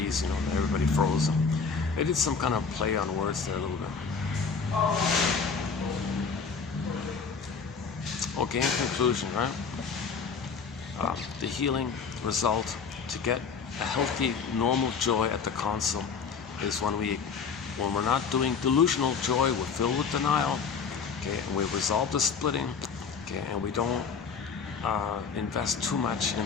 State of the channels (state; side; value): quieter; right; 5.6 dB